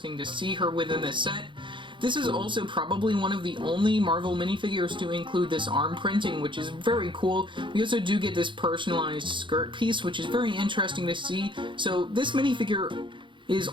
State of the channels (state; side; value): late; left; 0.24 ms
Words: to see her within the set. This is also probably one of the only Marvel minifigures to include this arm printing, which is very cool. We also do get this personalized skirt piece, which is very interesting to see. So this minifigure is